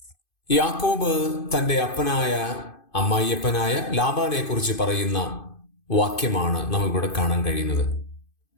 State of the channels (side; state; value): right; late; 2.5 ms